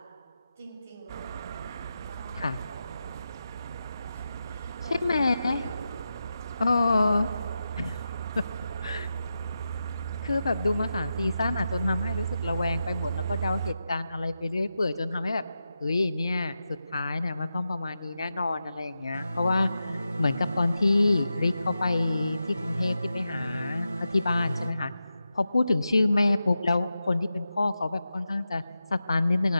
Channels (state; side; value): inverted; both; correlation -0.90